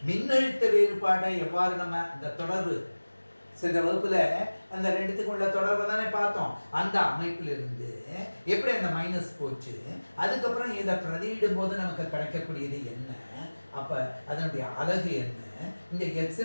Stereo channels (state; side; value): inverted; both; correlation -1.00